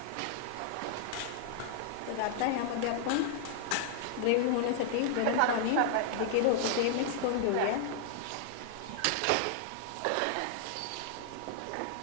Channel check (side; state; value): both; different; correlation -0.01